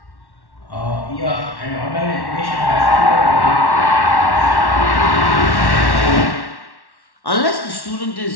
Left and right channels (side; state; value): right; late; 1.1 ms